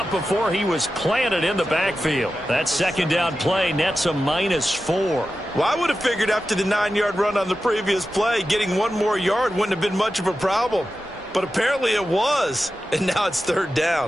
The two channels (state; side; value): normal; both; correlation 0.92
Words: before he was planted in the backfield. That 2nd down play nets a -4. Well, I would have figured after the 9-yard run on the previous play, getting 1 more yard wouldn't have been much of a problem. But apparently it was. And now it's 3rd